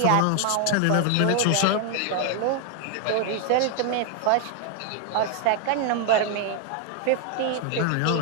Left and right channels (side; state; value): both; different; correlation 0.00